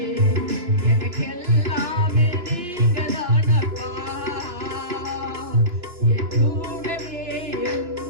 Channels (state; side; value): late; left; 2.9 ms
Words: எனக்கு எல்லாமே நீங்க தானப்பா. என் கூடவே இரும்